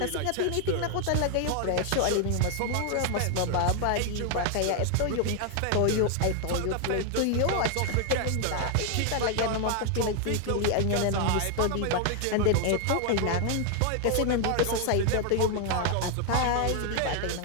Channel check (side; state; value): both; different; correlation 0.00